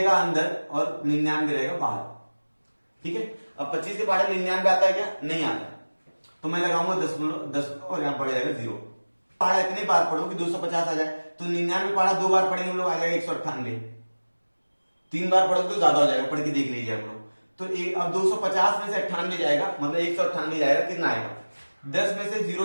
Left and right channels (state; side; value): inverted; both; correlation -1.00